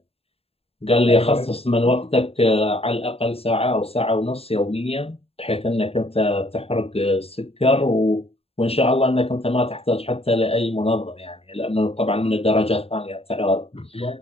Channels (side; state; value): right; late; 0.28 ms